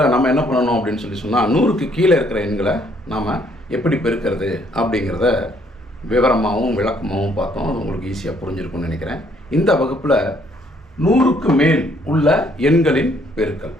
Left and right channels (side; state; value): both; normal; correlation 0.66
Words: நம்ம என்ன பண்ணணும் அப்படின்னு சொன்னால் 100க்கு கீழே இருக்கிற எண்களை நாம் எப்படி பெருக்கிறது அப்படிங்கிறத விவரமாகவும் விளக்கமாகவும் பார்த்தோம். அது உங்களுக்கு ஈஸியாக புரிஞ்சிருக்கும்னு நினைக்கிறேன். இந்த வகுப்பில் 100க்கு மேல் உள்ள எண்களின் பெருக்கல்,